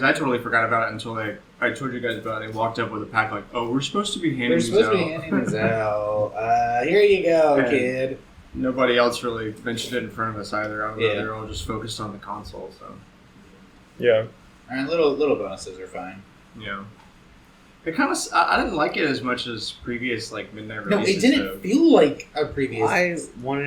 I totally forgot about it until I told you guys about it. They walked up with a pack like, oh, we're supposed to be handing these out. We're supposed to be handing these out. Here you go, And kid. Nobody else really mentioned it in front of us either. I don't know, Yeah. they're all just focused on the console, so. Yeah. And little bonuses are fine. Yeah. It kind of, I didn't like it as much as previous, like, midnight No, releases. it didn't feel like a previous. I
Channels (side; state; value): both; identical; correlation 1.00